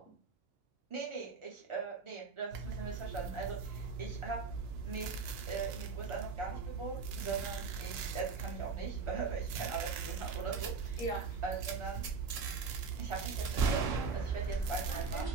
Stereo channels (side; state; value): left; quieter; 4.8 dB